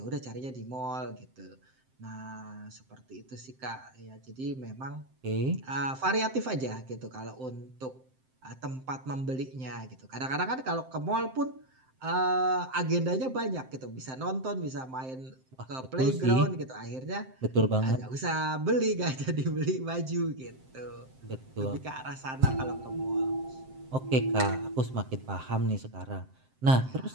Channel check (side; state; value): left; late; 7.7 ms